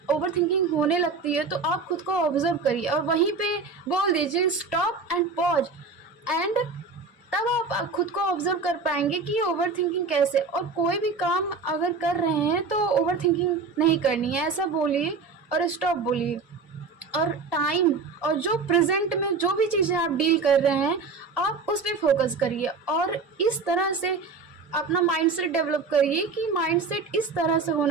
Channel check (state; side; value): quieter; left; 4.4 dB